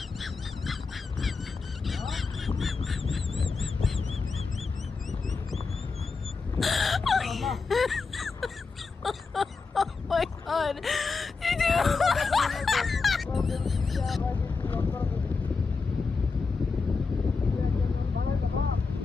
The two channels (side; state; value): right; quieter; 4.5 dB